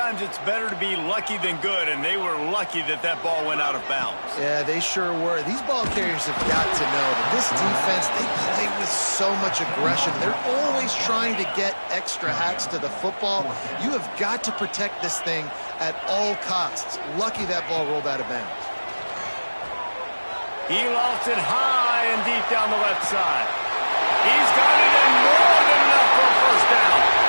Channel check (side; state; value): both; inverted; correlation -1.00